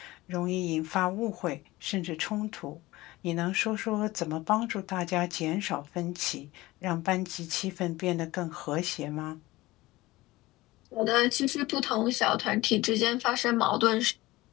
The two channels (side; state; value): right; quieter; 19.2 dB